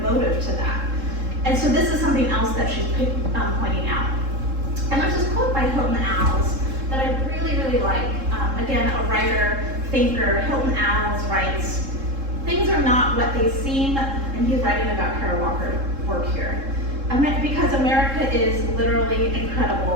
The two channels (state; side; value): late; left; 3.7 ms